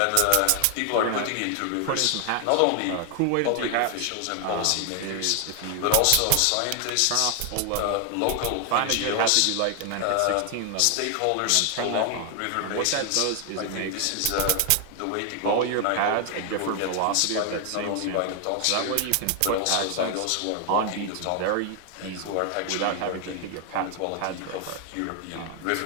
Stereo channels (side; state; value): both; different; correlation 0.00